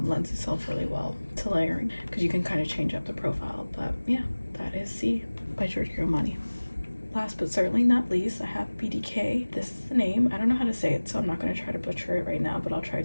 lends itself really well to layering, because you can kind of change up the profile. But yeah, that is C by Giorgio Armani. Last but certainly not least, I have BDK. This is the name. I don't know how to say it, so I'm not going to try to butcher it right now, but I'll try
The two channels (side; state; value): both; inverted; correlation -1.00